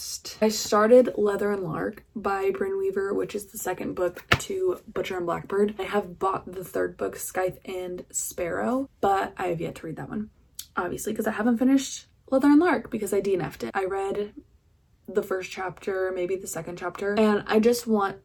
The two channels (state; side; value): identical; both; correlation 1.00